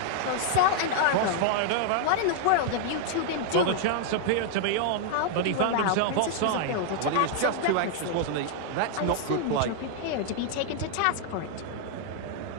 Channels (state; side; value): different; both; correlation -0.01